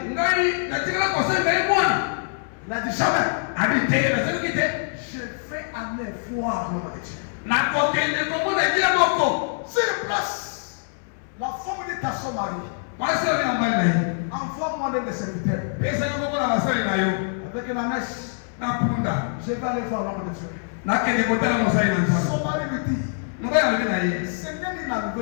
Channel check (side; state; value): right; silent; 62 dB below the other